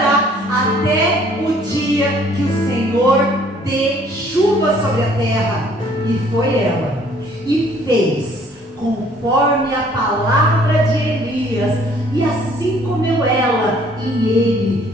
até o dia que o Senhor dê chuva sobre a terra. E foi ela, e fez conforme a palavra de Elias, e assim comeu ela e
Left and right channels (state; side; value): normal; both; correlation 0.59